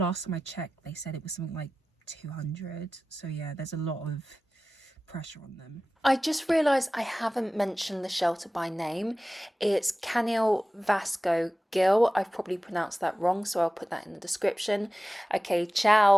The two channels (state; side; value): normal; both; correlation 0.96